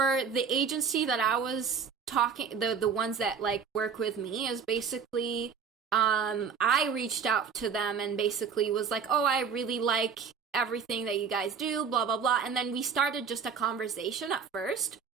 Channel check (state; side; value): quieter; left; 6.3 dB